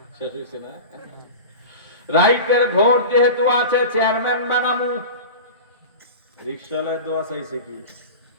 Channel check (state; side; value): inverted; both; correlation -0.31